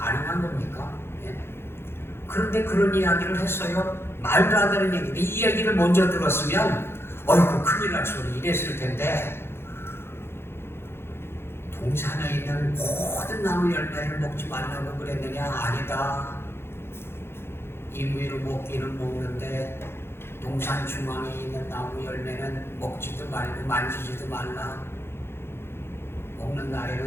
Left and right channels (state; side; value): late; right; 0.12 ms